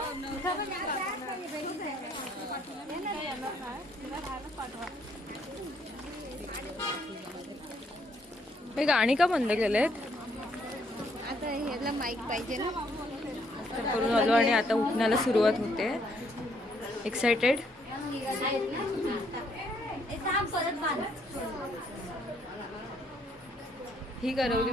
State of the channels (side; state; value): both; normal; correlation 0.69